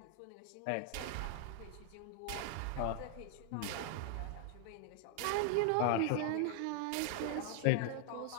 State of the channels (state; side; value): different; both; correlation 0.00